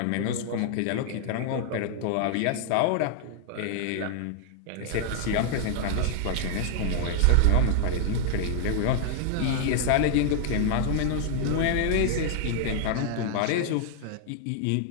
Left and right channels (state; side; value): different; both; correlation 0.00